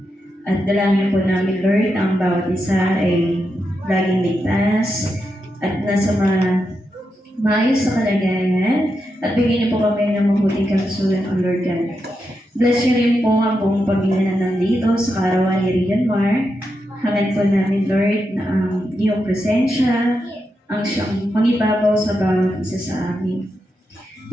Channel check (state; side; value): normal; both; correlation 0.86